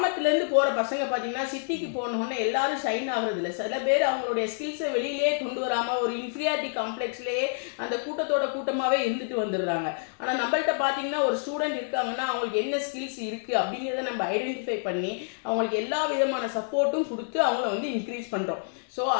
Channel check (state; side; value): silent; right; digital silence